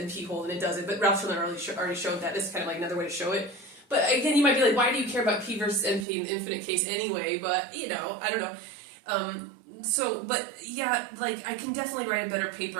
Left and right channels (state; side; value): drops out; left; at 6.1 s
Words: hold, and it doesn't. But Ralph Schiller already showed that. This is kind of like another way to show it. But again, you might be like, why do you care about P versus NP in the infinite case anyway? But, I don't know. But yeah, like, I can definitely write a better